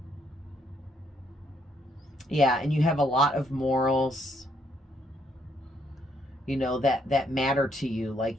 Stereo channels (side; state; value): both; normal; correlation 0.71